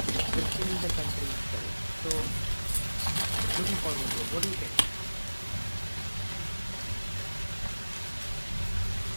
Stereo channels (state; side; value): inverted; both; correlation -1.00